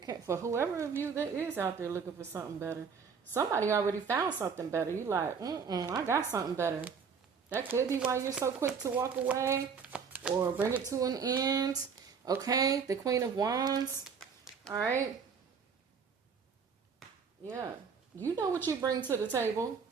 for whoever of you that is out there looking for something better, somebody already found something better. You like, I got something better. That could be why you're so quick to walk away or bring it to an end. Okay, the Queen of Wands. All right. Yeah, you know what you bring to the table.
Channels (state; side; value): quieter; left; 6.0 dB